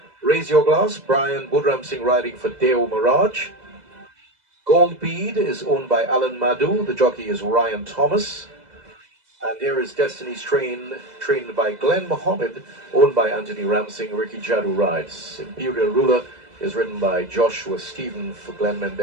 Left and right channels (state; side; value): late; left; 2.0 ms